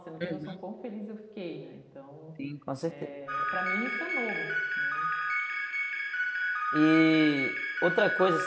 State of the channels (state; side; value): identical; both; correlation 1.00